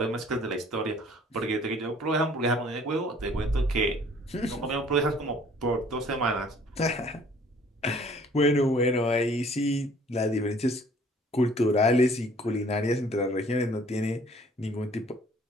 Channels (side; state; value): both; normal; correlation 0.56